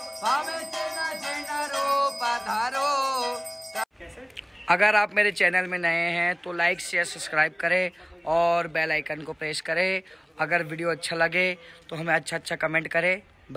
हमें चिन्ह चिन्ह रूप धारो। अगर आप मेरे चैनल में नए हैं तो लाइक शेयर सब्सक्राइब करें और बेल आइकन को प्रेस करें। अगर वीडियो अच्छा लगे तो हमें अच्छा कमेंट करें।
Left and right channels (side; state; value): both; identical; correlation 1.00